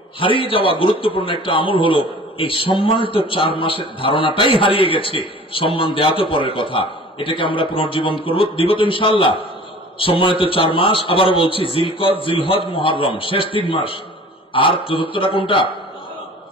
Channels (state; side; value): normal; both; correlation 0.45